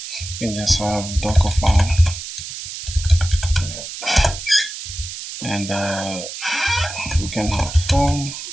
You can just have Docker file, and we can have form,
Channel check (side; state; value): right; noise; hiss, 9 dB below the sound